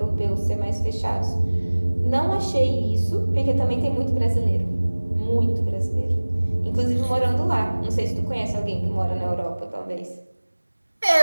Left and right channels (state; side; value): inverted; both; correlation -1.00